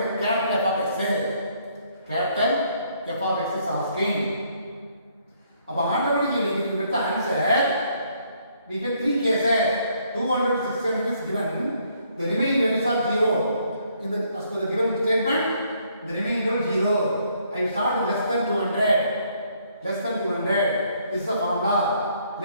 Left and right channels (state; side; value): inverted; both; correlation -0.68